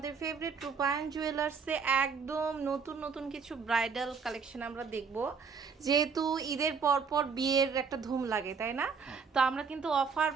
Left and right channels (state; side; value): quieter; left; 5.6 dB